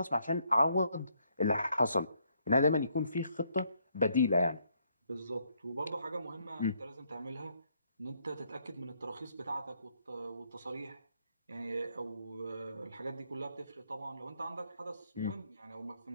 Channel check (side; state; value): both; inverted; correlation -0.72